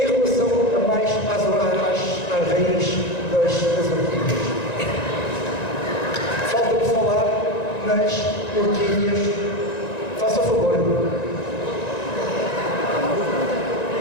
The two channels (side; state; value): right; late; 1.9 ms